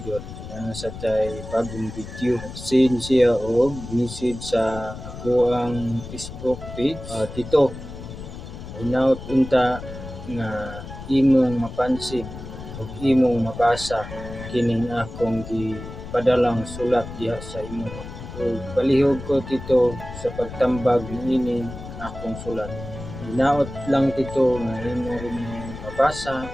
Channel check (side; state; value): left; noise; rumble, 11 dB below the sound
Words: idol, sa tay bagong video. Send siya og message sa ako ang Facebook page. Tito, hinaut unta nga imong mapansin ug imong mabasa kining akong gipadalang sulat diha sa imo. Ug palihog ko tito sa pagtambag niining akong sulat. Hinaut lang tito nga imo rin mabasa